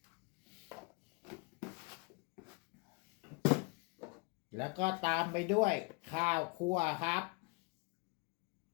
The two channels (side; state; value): right; quieter; 30.7 dB